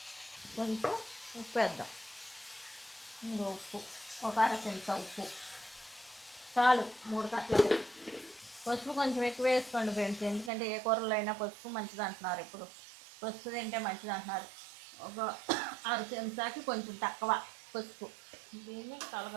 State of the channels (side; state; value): left; drops out; at 10.5 s